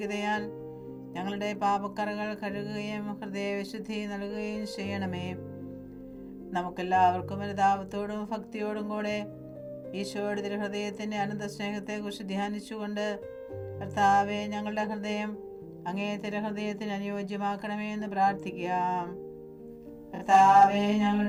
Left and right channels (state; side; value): identical; both; correlation 1.00